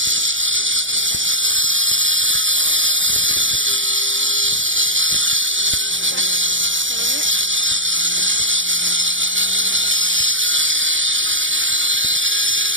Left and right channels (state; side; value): late; left; 0.56 ms